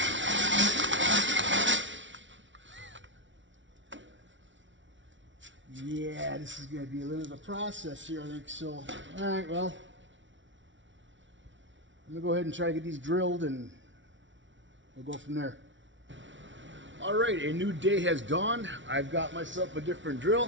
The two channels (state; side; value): late; left; 0.55 ms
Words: Yeah, this is going to be a little bit of a process here, I think. So, all right, well, I'm going to go ahead and try to get these drilled, and we'll go from there. All right, a new day has dawned. I've got myself a different